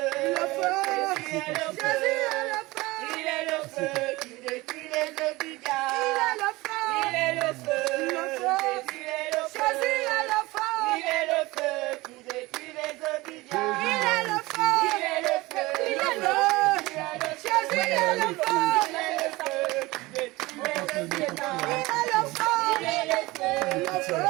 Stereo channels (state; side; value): quieter; left; 21.0 dB